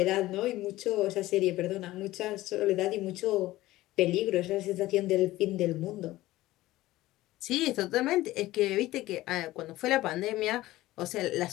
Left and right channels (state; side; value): quieter; right; 16.9 dB